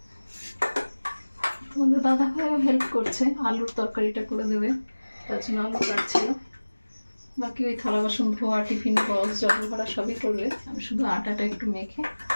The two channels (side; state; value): both; inverted; correlation -1.00